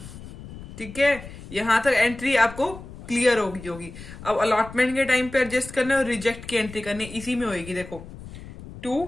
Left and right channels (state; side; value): noise; left; rumble, 14 dB below the sound